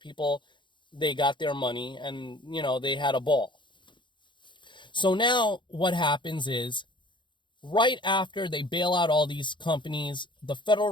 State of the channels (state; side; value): late; right; 0.23 ms